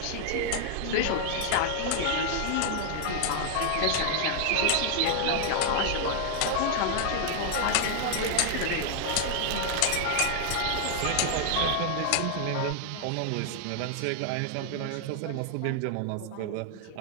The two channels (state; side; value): different; both; correlation 0.00